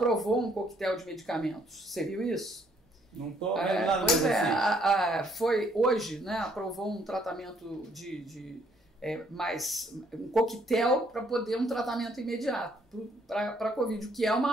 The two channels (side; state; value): both; normal; correlation 0.67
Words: um coquetel de medicamentos. Você viu isso? Não estou vendo nada pois assim. Hoje, né? Aprovou um tratamento mais um coquetel para poder um tratamento imediato para a Covid, o que é